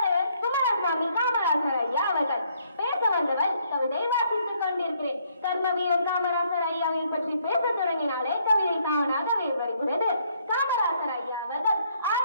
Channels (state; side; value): inverted; both; correlation -0.69